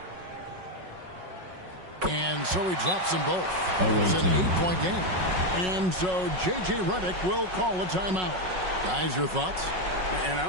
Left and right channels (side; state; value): left; late; 5.4 ms